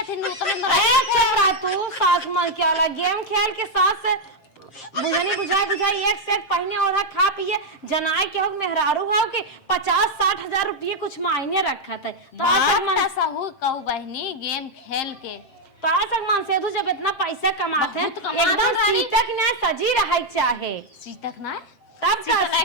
थी तू सास मन क्या वाला गेम खेल के सास से बुझनी बुझाई एक सेट पहने और खा पिए जनाए के हो मेहरारू हो के 50-60 हजार रुपये कुछ मायने रखत है तो सहू कहू बहनी गेम खेल के तो आज मन से जब इतना पैसा कमाते हैं एकदम सीतक ना सजी रहा चाहे सीतक ना तब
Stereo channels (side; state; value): right; late; 7.6 ms